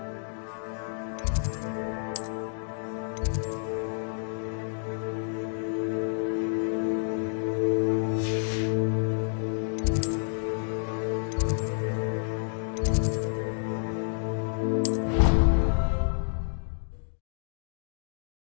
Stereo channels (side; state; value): right; silent; digital silence